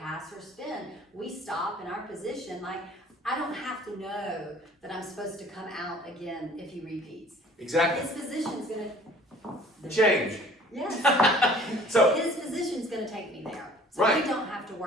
pass or spin. We stop in our position. Like, I don't have to know that I'm supposed to come out again if he repeats. Exactly. His position's gonna change. Yes. So his position's gonna take me there. So right. we don't have to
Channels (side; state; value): both; normal; correlation 0.51